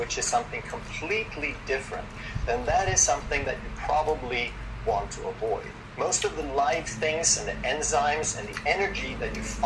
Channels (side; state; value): both; identical; correlation 1.00